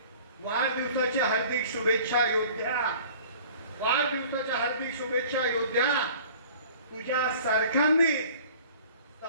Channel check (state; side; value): inverted; both; correlation -0.47